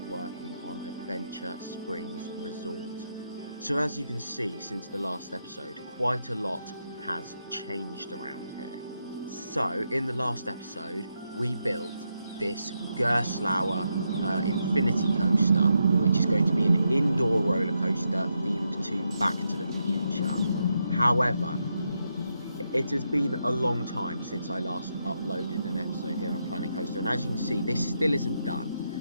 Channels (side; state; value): both; inverted; correlation -0.83